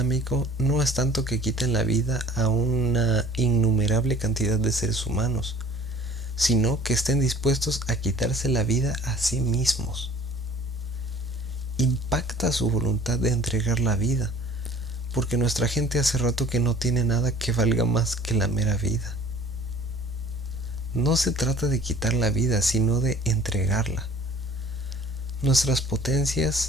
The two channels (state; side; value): normal; both; correlation 0.50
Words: no es tanto que quiten la vida a una innumerable cantidad de seres humanos, sino que estén dispuestos a quitarse la vida a sí mismos. Impacta su voluntad de entregar la vida, porque nuestra gente hace rato que no tiene nada que valga más que la mera vida. No se trata de quitar la vida, sino de entregarla. Nuestras